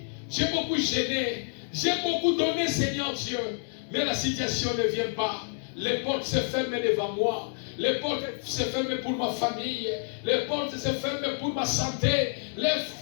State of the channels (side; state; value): right; silent; 59 dB below the other